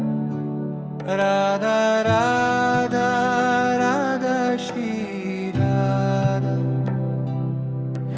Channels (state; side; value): identical; both; correlation 1.00